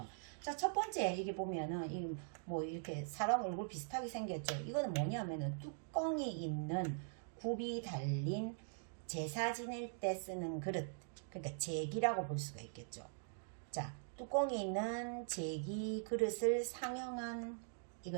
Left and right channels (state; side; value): silent; left; digital silence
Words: 자, 첫 번째 이게 보면은 뭐 이렇게 사람 얼굴 비슷하게 생겼죠. 이거는 뭐냐면은 뚜껑이 있는 굽이 달린 제사 지낼 때 쓰는 그릇, 그러니까 제기라고 볼 수가 있겠죠. 자, 뚜껑이 있는 제기 그릇을 상형한